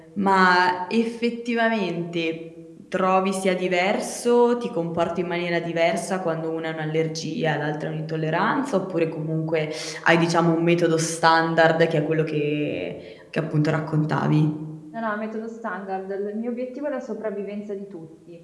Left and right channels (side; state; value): both; identical; correlation 1.00